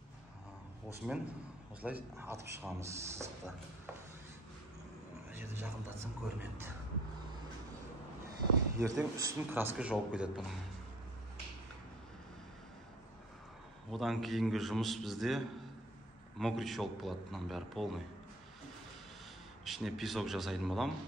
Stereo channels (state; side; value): normal; both; correlation 0.52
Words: Осымен осылай атып шығамыз сызықты. Жерді жақындатсам көрінеді. Ертең үстін краска жауып кетеді бұның. Одан кейінгі жұмыс бізде мокрый шелк болады, бұның бәрі полный. Ішіне песок жасайтын болам.